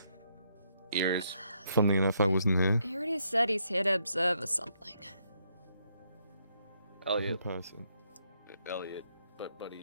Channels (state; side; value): inverted; both; correlation -0.75